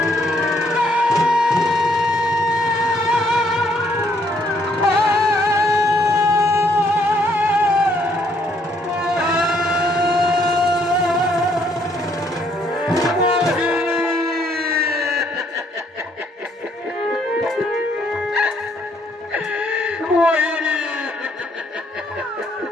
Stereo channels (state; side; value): normal; both; correlation 0.69